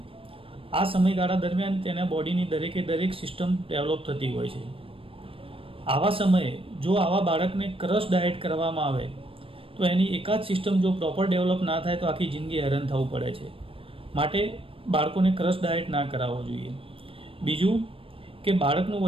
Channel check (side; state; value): left; late; 0.26 ms